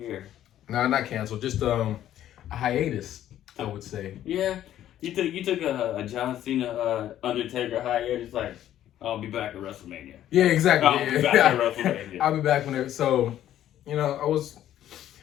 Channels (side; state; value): right; quieter; 11.9 dB